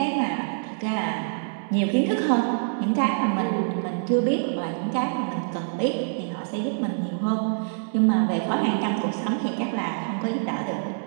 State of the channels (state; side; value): silent; left; 61 dB below the other